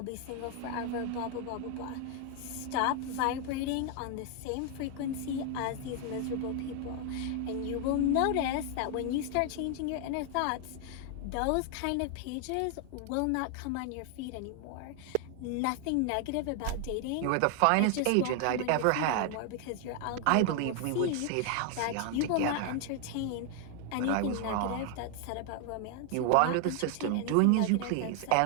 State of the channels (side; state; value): both; different; correlation 0.00